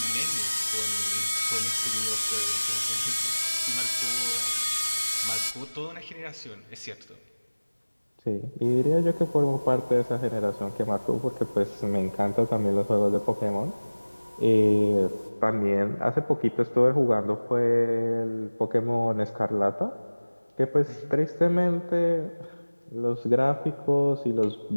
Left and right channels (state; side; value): inverted; both; correlation -1.00